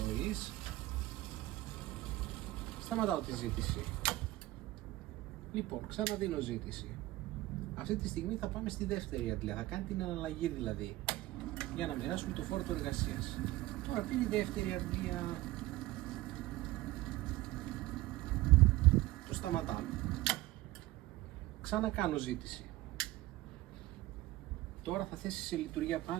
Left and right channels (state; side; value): quieter; left; 17.8 dB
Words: Σταματάω τη ζήτηση. Λοιπόν, ξαναδίνω ζήτηση. Αυτή τη στιγμή θα πάμε στη δεύτερη αντλία, θα κάνει την αναλλαγή δηλαδή, για να μοιράσουμε το φόρτο εργασίας. Τώρα πήρε η δεύτερη αντλία. Το σταματάμε. Ξανακάνω ζήτηση. Τώρα θα θέσει σε λειτουργία